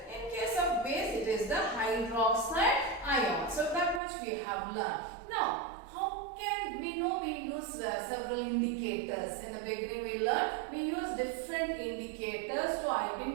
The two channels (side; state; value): left; drops out; at 4.0 s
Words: In case of base, it is the hydroxide ion. So that much we have learned. Now, how can we know? We use several indicators. In the beginning we learned we use different indicators to